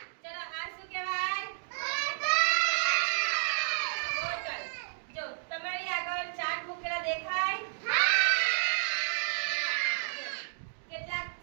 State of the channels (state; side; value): silent; left; digital silence